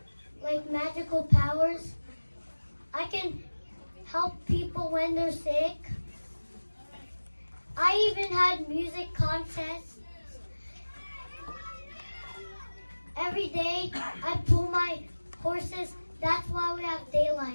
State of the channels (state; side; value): inverted; both; correlation -1.00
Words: like magical powers. I can help people when they're sick. I even had music contests. Every day I pull my horses. That's why we have